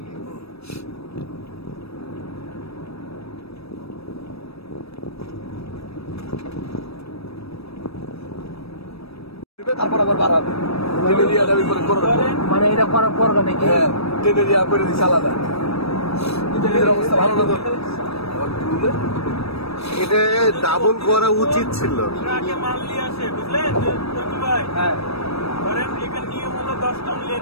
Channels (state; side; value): late; right; 0.78 ms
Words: নিয়ে। তারপর আবার বাড়াবে, মানে এটা করার পর নাকি? হ্যাঁ, ট্রেনের ইয়া করে দিচ্ছে আলাদা। ট্রেনের অবস্থা ভালো না তো, এটা ডাবল করা উচিত ছিল। মাল নিয়ে আসে, বুঝলেন ভাই? হ্যাঁ, ধরেন এখানে নিয়ম হলো 10 টন